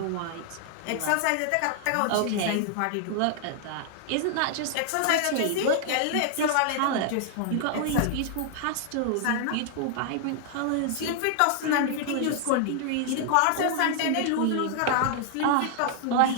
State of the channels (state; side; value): different; both; correlation 0.00